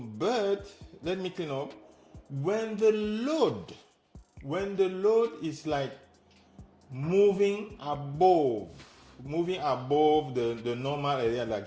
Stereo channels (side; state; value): both; identical; correlation 1.00